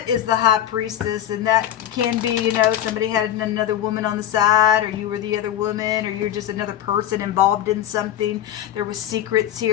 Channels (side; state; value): right; quieter; 11.3 dB